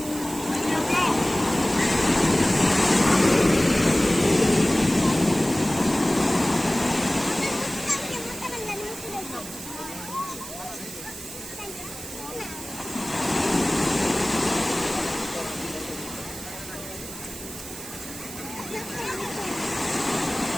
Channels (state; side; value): noise; right; hiss, 12 dB below the sound